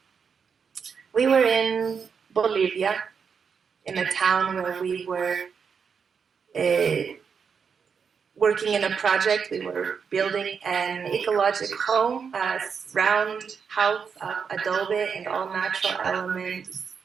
We were in Bolivia, in a town where we were working in a project. We were building an ecological home, a round house of adobe and all natural elements.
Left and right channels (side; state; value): left; quieter; 6.3 dB